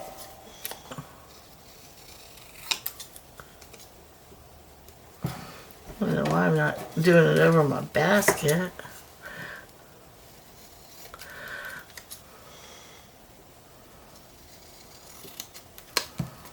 don't know why I'm not doing it over my basket.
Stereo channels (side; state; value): both; identical; correlation 1.00